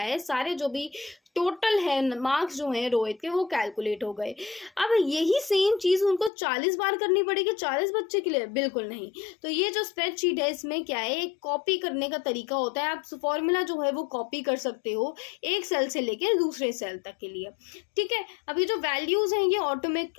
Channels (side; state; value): right; drops out; at 6.3 s